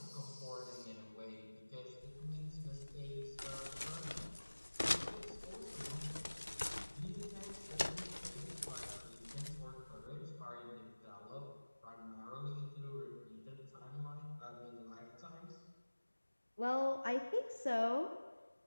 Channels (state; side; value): inverted; both; correlation -1.00